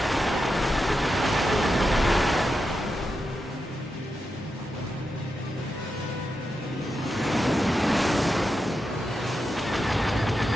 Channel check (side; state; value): both; normal; correlation 0.88